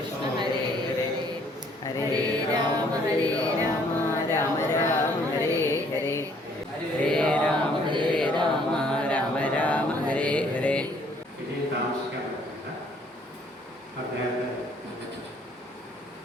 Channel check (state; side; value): normal; both; correlation 0.62